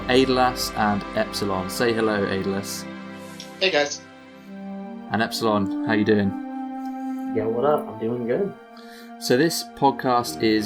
Aidalas and Epzilon. Say hello, Aidalas. Hey guys. And Epzilon, how you doing? Yeah, what up? I'm doing good. So this podcast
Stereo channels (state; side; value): identical; both; correlation 1.00